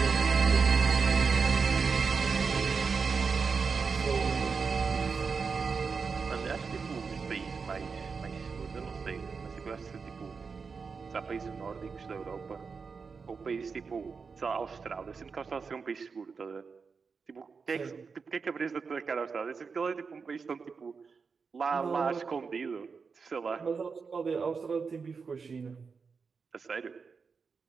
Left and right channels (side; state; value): left; quieter; 5.2 dB